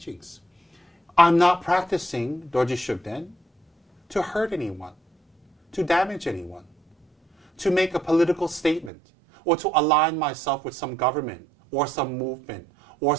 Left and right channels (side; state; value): left; drops out; at 8.9 s